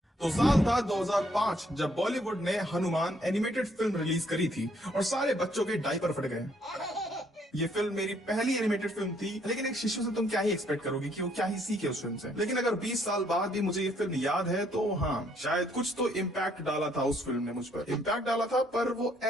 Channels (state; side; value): normal; both; correlation 0.68